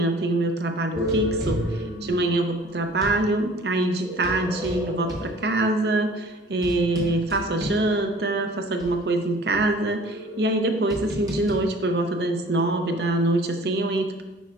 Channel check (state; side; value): normal; both; correlation 0.49